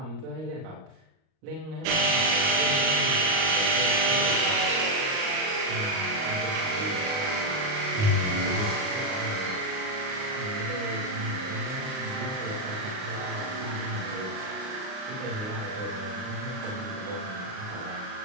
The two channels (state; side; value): late; left; 38 ms